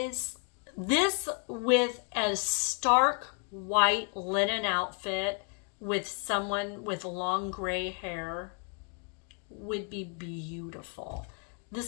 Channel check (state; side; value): quieter; right; 38.7 dB